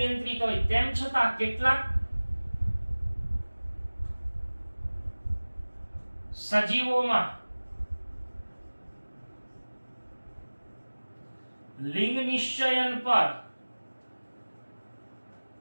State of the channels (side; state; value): both; inverted; correlation -1.00